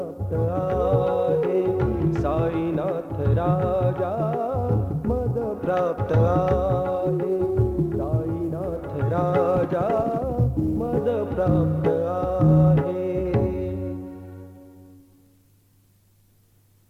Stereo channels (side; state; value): both; identical; correlation 1.00